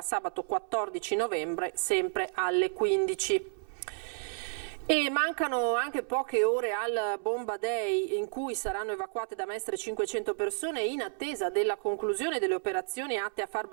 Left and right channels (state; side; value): silent; left; 57 dB below the other